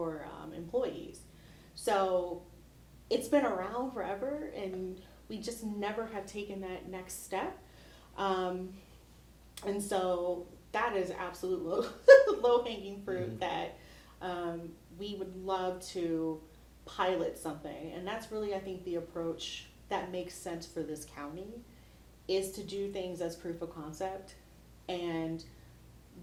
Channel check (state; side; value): identical; both; correlation 1.00